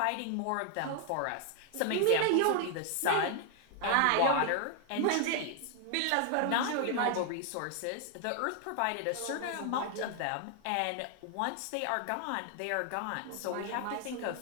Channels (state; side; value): different; both; correlation 0.00